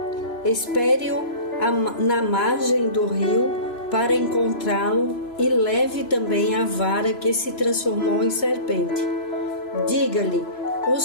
Espere-o na margem do rio para encontrá-lo e leve também a vara que se transformou em serpente. Diga-lhe: O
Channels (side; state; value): right; late; 3.0 ms